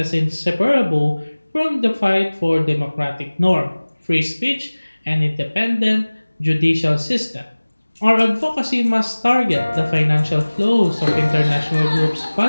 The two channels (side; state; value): both; inverted; correlation -1.00